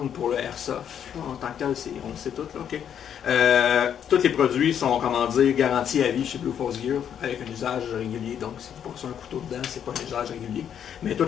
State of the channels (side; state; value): right; quieter; 8.9 dB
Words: pour le Airsoft. En tant que tel, on le sait tout. Là, tous les produits sont, comment dire, garantis à vie chez Blue Force Gear avec un usage régulier. Donc, si vous passez un couteau dedans, c'est pas un usage régulier. Mais tout